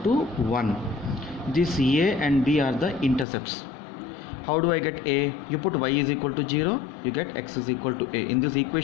1. This a and b are the intercepts. How do I get a? You put y is equal to 0, you get x is equal to a. In this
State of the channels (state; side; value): drops out; right; at 3.2 s